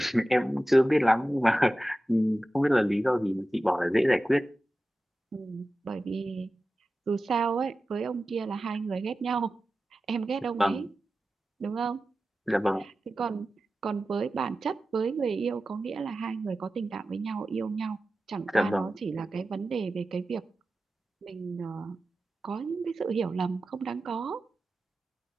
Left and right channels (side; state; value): both; normal; correlation 0.94